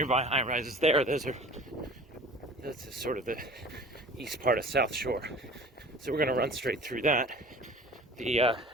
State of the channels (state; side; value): normal; both; correlation 0.43